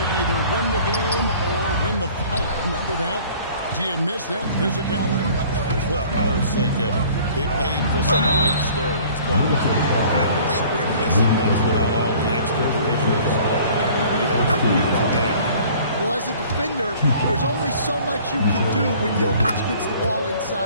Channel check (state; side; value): inverted; both; correlation -0.51